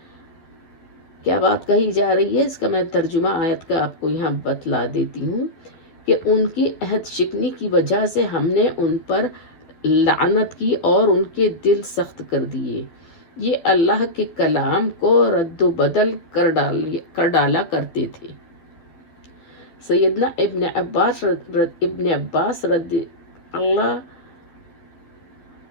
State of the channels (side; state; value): right; late; 12 ms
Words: کیا بات کہی جا رہی ہے؟ اس کا میں ترجمہ آیت کا آپ کو یہاں بتلا دیتی ہوں کہ ان کی عہد شکنی کی وجہ سے ہم نے ان پر لعنت کی اور ان کے دل سخت کر دیے، یہ اللہ کے کلام کو رد و بدل کر ڈالا کرتے تھے۔ سیدنا ابن عباس رضی اللہ